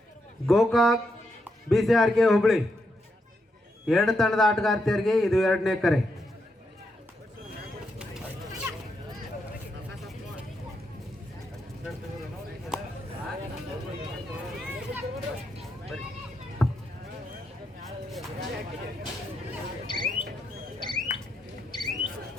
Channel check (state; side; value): normal; both; correlation 0.82